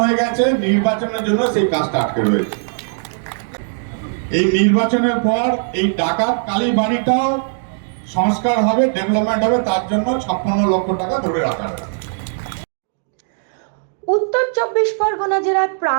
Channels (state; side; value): silent; left; digital silence